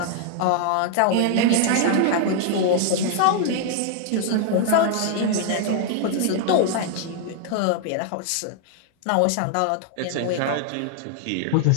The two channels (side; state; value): both; different; correlation 0.00